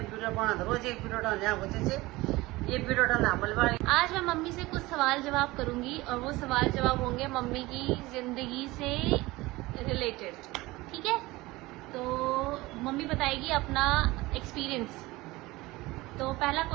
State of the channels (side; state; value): left; quieter; 20.3 dB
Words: वीडियो बना रोज एक वीडियो डालने होते से ये वीडियो डालना हमल आज मैं मम्मी से कुछ सवाल जवाब करूंगी और वो सवाल जवाब होंगे मम्मी की जिंदगी से रिलेटेड। ठीक है, तो मम्मी बताएगी अपना एक्सपीरियंस। तो पहला